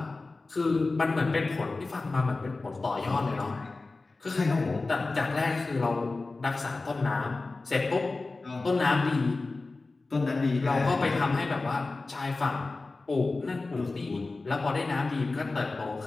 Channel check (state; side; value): quieter; right; 3.5 dB